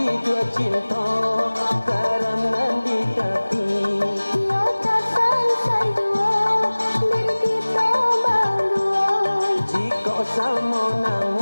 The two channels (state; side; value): inverted; both; correlation -1.00